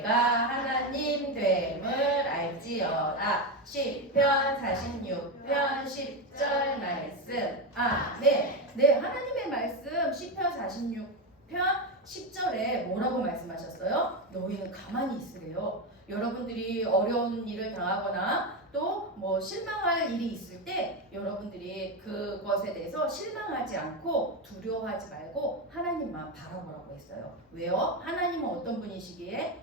하나님 됨을 알지어다. 시편 46편 10절 말씀. 아멘. 네, 하나님의 말씀 시편 46편 10절에 뭐라고 말씀하셨어요? 너희는 가만히 있으래요. 여러분들이 어려운 일을 당하거나 또 뭐 실망할 일이 있을 때 여러분들이 그것에 대해서 실망하지 않고 두려워하지 말고 하나님만 바라보라고 했어요. 왜요? 하나님은 어떤 분이시기에?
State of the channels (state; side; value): normal; both; correlation 0.12